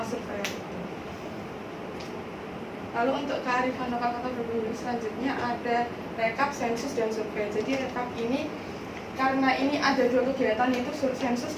surveyor itu. Lalu untuk kearifan lokal Kota Probolinggo selanjutnya ada rekap, sensus, dan survei. Jadi rekap ini karena ini ada 2 kegiatan, yaitu sensus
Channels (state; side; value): identical; both; correlation 1.00